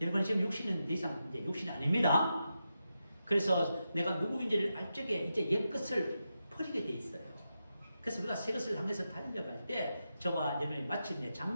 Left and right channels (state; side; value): inverted; both; correlation -0.88